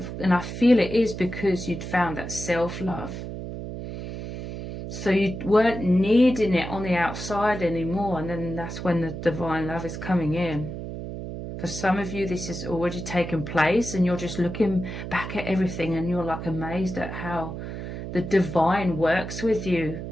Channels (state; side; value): noise; right; hum, 7 dB below the sound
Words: and I feel it is because you'd found that self-love, so you weren't needing it on the outside anymore. And then that's when the divine love is coming in. For some of you, this has already taken place, and you're just looking back at everything and you're like amazed at how the divine works with you